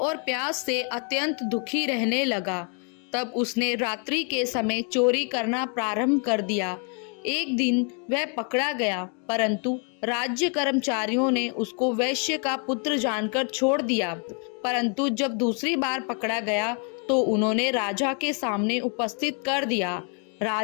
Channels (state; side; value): quieter; right; 39.4 dB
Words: प्यास से अत्यंत दुखी रहने लगा। तब उसने रात्रि के समय चोरी करना प्रारंभ कर दिया। एक दिन वह पकड़ा गया, परंतु राज्य कर्मचारियों ने उसको वैश्य का पुत्र जानकर छोड़ दिया। परंतु जब दूसरी बार पकड़ा गया तो उन्होंने राजा के सामने उपस्थित कर दिया।